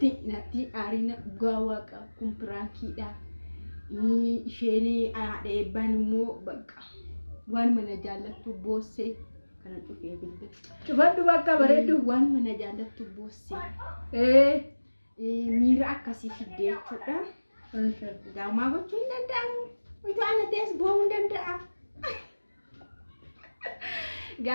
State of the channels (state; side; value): inverted; both; correlation -1.00